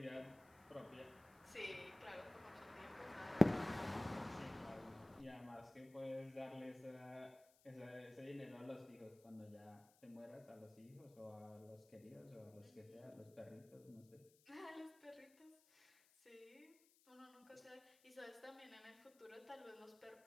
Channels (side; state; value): left; noise; hiss, 27 dB below the sound